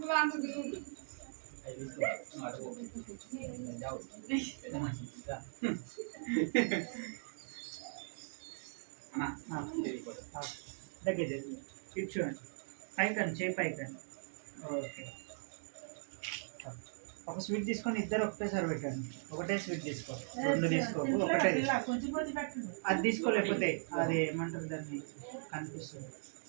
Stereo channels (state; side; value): silent; left; digital silence